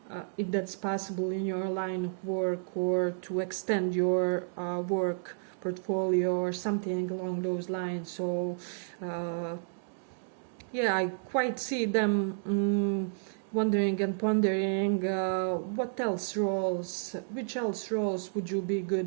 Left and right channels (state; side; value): silent; left; digital silence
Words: if that's possible in your line of work, or to extend your work portfolio or something along those lines. So I quite see them wondering and pondering which else roles would you be